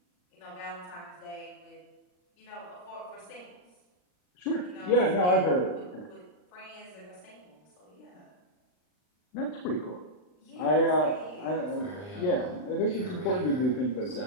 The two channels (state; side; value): late; right; 39 ms